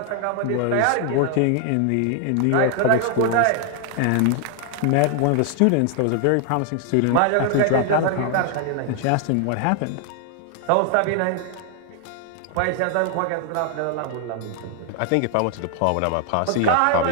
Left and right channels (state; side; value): different; both; correlation 0.00